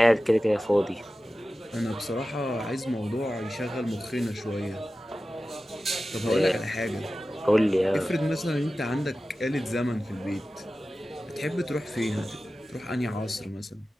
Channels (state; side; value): normal; both; correlation 0.95